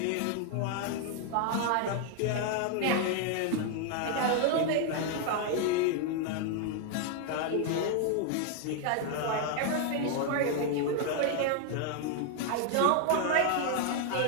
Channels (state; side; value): different; both; correlation 0.00